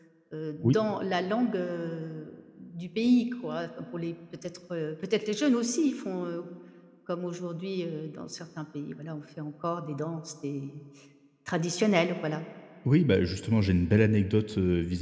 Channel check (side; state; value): both; identical; correlation 1.00